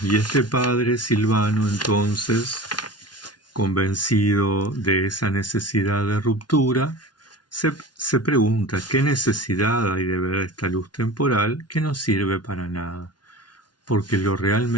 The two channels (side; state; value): right; late; 0.70 ms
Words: Y este padre Silvano, entonces, convencido de esa necesidad de ruptura, se pregunta qué necesidad hay de ver esta luz temporal que no sirve para nada, porque lo